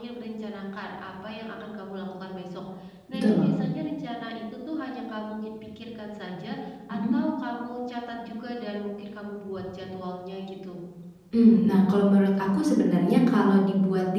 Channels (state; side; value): identical; both; correlation 1.00